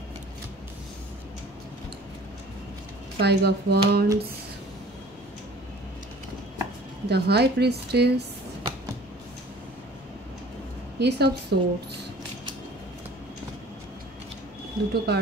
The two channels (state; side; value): normal; both; correlation 0.48